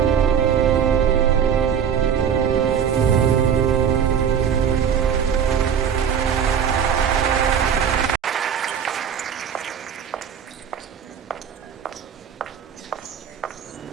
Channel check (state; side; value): quieter; left; 7.8 dB